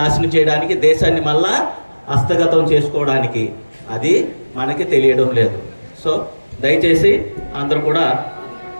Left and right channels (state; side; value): inverted; both; correlation -1.00